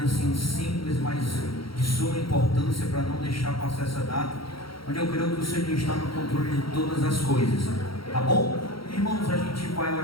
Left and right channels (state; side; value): late; right; 0.74 ms